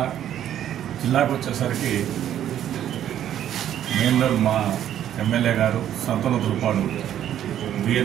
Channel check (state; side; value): quieter; left; 10.9 dB